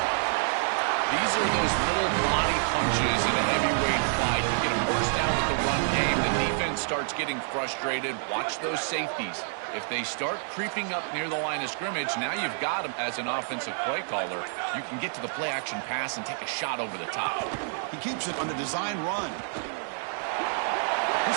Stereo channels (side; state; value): left; silent; 59 dB below the other